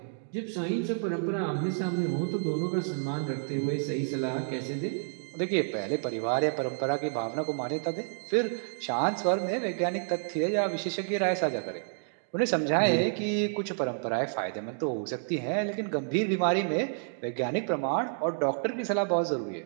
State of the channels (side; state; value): left; silent; digital silence